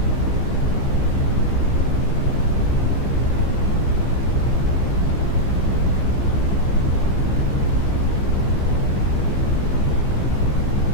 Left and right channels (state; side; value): late; right; 15 ms